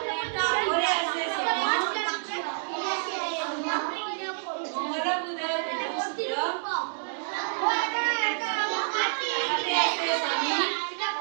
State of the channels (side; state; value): left; silent; digital silence